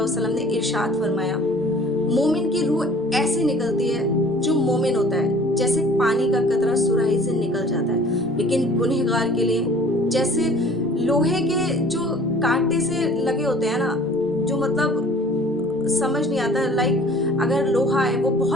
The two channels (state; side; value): normal; both; correlation 0.49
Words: वसल्लम ने इरशाद फरमाया, मोमिन की रूह ऐसे निकलती है जो मोमिन होता है जैसे पानी का कतरा सुराही से निकल जाता है, लेकिन गुनहगार के लिए जैसे लोहे के जो कांटे से लगे होते हैं ना, जो मतलब समझ नहीं आता। लाइक अगर लोहा है वो